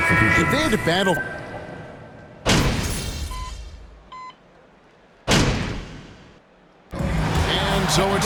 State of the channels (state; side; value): identical; both; correlation 1.00